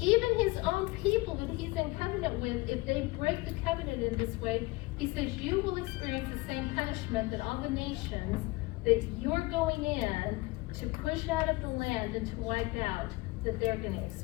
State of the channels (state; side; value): quieter; right; 22.6 dB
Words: his own people that he's in covenant with, if they break the covenant in this way, he says you will experience the same punishment that all the nations that you're going in to push out of the land and to wipe out, that they're going to